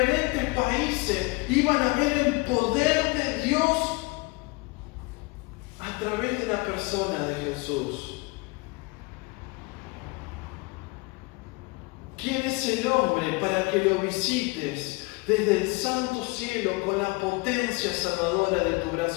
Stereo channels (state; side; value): quieter; right; 26.3 dB